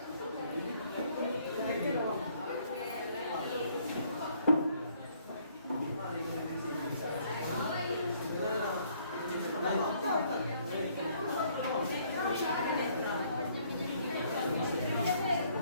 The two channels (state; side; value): inverted; both; correlation -0.64